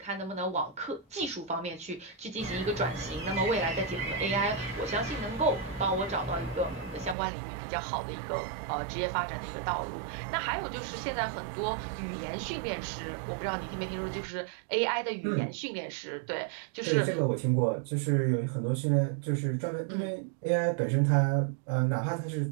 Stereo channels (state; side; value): drops out; left; at 7.2 s